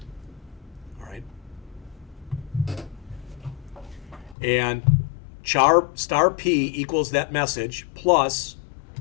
All right. And star P equals that message plus,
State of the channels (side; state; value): right; drops out; at 4.4 s